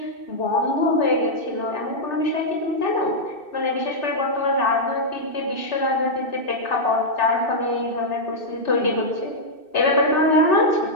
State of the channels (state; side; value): late; right; 2.6 ms